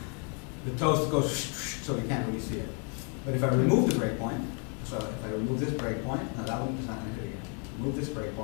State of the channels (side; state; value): right; quieter; 39.4 dB